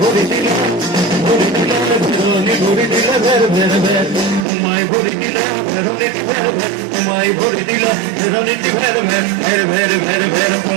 দিলে ভেরোনি ঘুরি দিলে ভের ভের ভের ঘুমাই ঘুরি দিলে ভেরোনি ভের ভের ঘুমাই ঘুরি দিলে ভেরোনি ভের ভের ভের ভের ভের ভের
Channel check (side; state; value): left; drops out; at 4.5 s